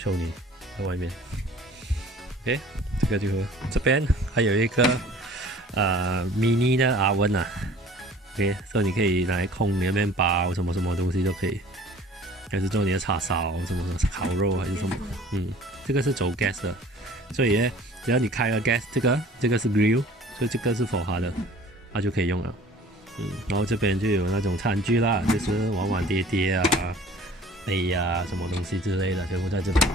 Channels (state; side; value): normal; both; correlation 0.49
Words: 你在外面。OK， 这个就这边还有一个mini 的oven 啊。OK， 所以你可以来烘你的面包，什么东西都可以，还是做你的叉烧，什么烤肉还是什么。这个是走 gas 的，所以呢，只要你开了 gas， 这个是 grill， 所以这个是 for 它的，它就可以用了。然后这边就有那种餐具啦，就是碗碗碟碟啊。杯呀、什么东西之类的，全部在这边。